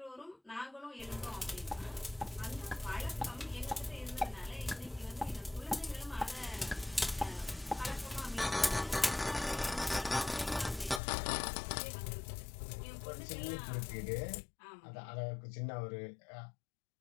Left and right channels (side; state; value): right; drops out; at 11.0 s